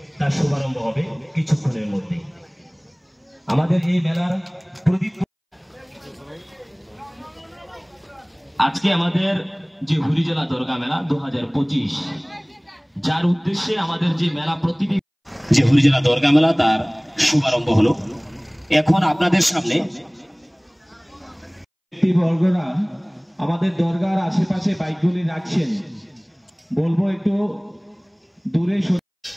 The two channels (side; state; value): both; identical; correlation 1.00